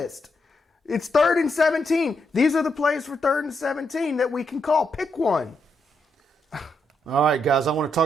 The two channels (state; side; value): normal; both; correlation 0.80